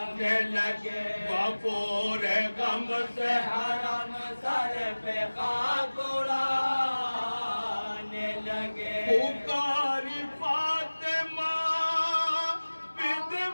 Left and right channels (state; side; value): inverted; both; correlation -1.00